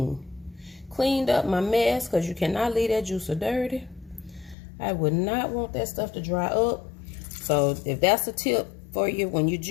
Cleaned up my mess because you cannot leave that juicer dirty. I would not want that stuff to dry up. So if that's a tip for you when you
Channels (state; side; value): drops out; right; at 4.5 s